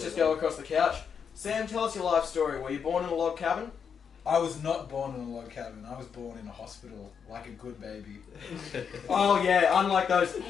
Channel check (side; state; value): right; quieter; 6.9 dB